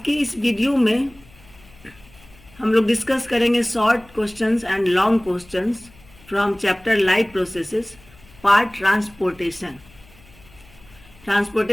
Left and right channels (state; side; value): noise; left; hum, 26 dB below the sound